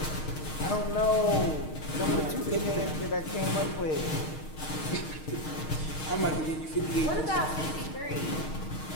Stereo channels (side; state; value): right; late; 6.5 ms